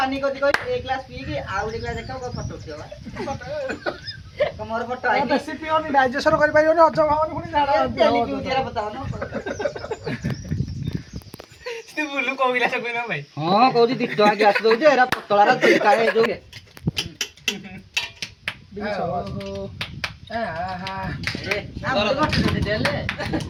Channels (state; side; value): identical; both; correlation 1.00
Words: କରିଛି କହି ଏ ଗ୍ଲାସ ପିଇକି ଆଉ ଗୋଟେ ଗ୍ଲାସ ଦେଖାଉ ଫଟୋ ଉଠିବ ମୋର ଫଟୋ ଆଇଛି ବେଶୀ ପିଅନି ଡାଇଜେସନ କରିପାରିବନି ହଜମ ହବନି ପୁଣି ଝାଡା ତେଲି ପିଉଛିରା ବତାଅ ନା ତୁ ବୁଲୁ କୋଉ ଗ୍ଲାସ କହିନ ଭାଇ ହଁ କହୁଛି 2 ଟଙ୍କା ଗ୍ଲାସ ଦଉଛି ଏରା ପତଳାର ଚିକା ହେଇ ଯୋଉ